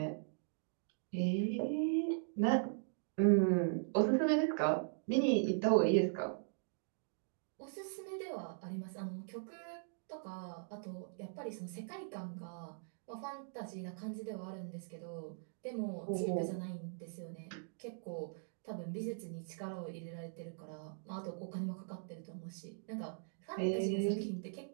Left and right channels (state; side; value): silent; left; digital silence